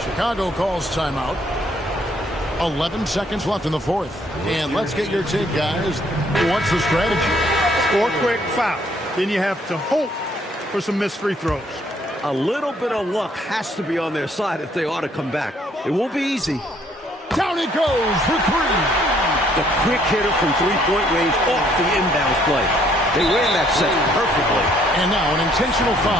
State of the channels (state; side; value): normal; both; correlation 0.65